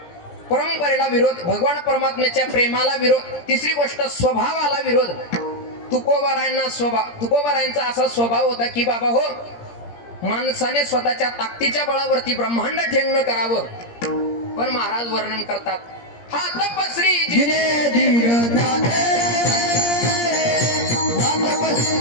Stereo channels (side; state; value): right; late; 17 ms